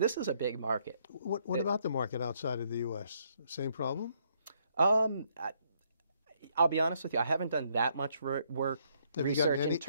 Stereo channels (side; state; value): both; inverted; correlation -0.71